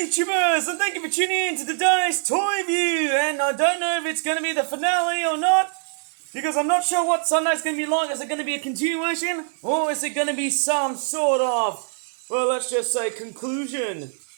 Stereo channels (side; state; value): left; silent; digital silence